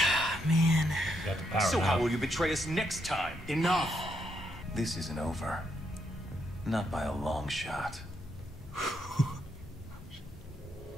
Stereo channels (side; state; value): both; normal; correlation 0.78